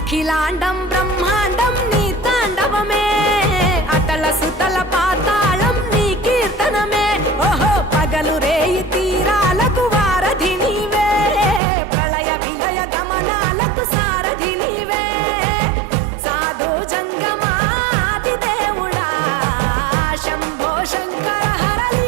అఖిలాండం బ్రహ్మాండం నీ తాండవమే, అతల సుతల పాతాళం నీ కీర్తనమే. ఓహో పగలు రేయి తీరాలకు వారధి నీవే, ప్రళయ విలయ గమనాలకు సారథి నీవే. సాధు జంగమాది దేవుడా శంభో శంకర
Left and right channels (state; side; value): drops out; left; at 11.6 s